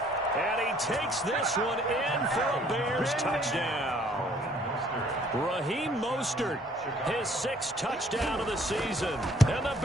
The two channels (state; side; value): normal; both; correlation 0.60